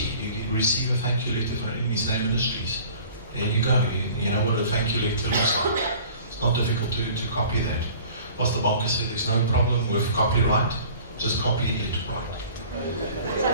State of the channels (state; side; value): inverted; both; correlation -0.47